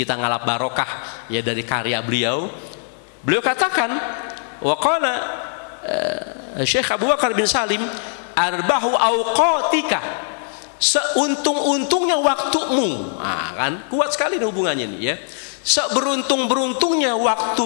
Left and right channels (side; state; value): right; silent; 62 dB below the other